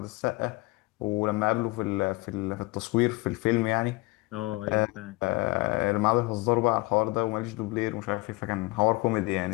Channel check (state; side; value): quieter; right; 23.9 dB